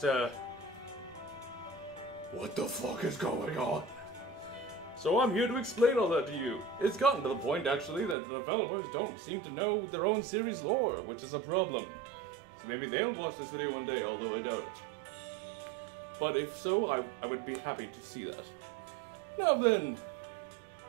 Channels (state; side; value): drops out; left; at 8.2 s